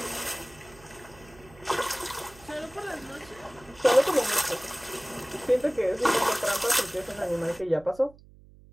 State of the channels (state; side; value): noise; right; hum, 23 dB below the sound